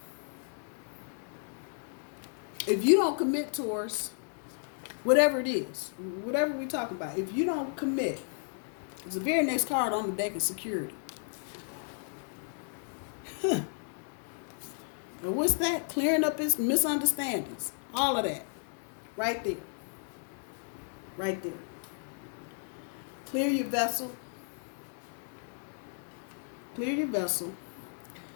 If you don't commit, Taurus, whatever it is, whatever we're talking about, if you don't commit, the very next card on the deck is security. And what's that? Clearing up his misunderstandings. All of that. Right there. Right there. Clear your vessel. Clear your vessel.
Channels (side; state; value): right; silent; 56 dB below the other